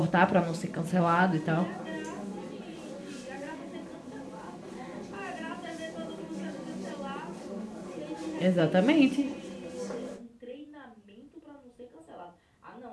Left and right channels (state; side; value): identical; both; correlation 1.00